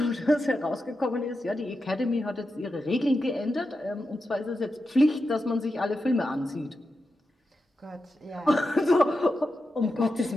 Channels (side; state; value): both; normal; correlation 0.89